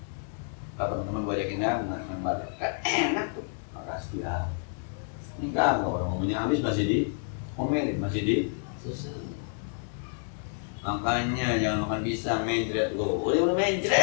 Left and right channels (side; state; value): right; silent; 58 dB below the other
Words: Kalau teman-teman gue ajakin ya, main badan. Kan enak tuh. Makasih ya. Ini kan orang ngomongnya habis masih di omelin, masih di susah. Makanya jangan makan pisang, mencret lo. Udah